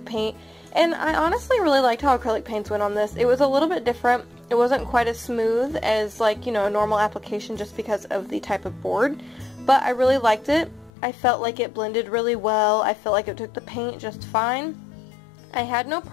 paint, and I honestly really liked how acrylic paints went on this. It was a little bit different. It wasn't quite as smooth as, like, you know, a normal application just because of the type of board. But I really liked it. I felt like it blended really well. I felt like it took the paint just fine. I had no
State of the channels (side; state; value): right; drops out; at 10.9 s